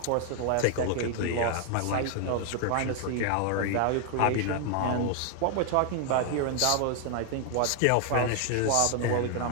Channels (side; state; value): both; different; correlation 0.00